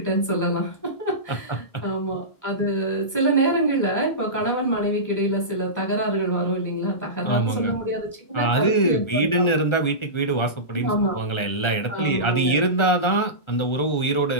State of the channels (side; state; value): right; late; 1.3 ms